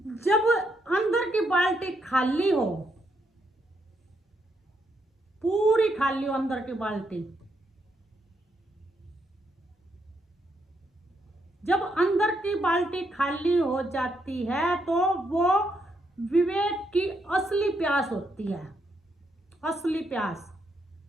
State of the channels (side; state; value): both; normal; correlation 0.77